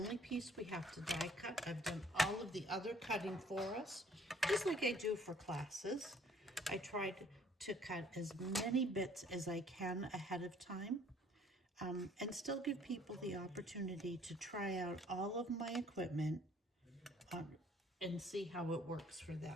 piece we have to die cut. I've done all of the other cutting for us, just like I do for classes. I tried to cut as many bits as I can ahead of time, and still give people the opportunity to try out all of my equipment and see how it works for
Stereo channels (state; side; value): normal; both; correlation 0.58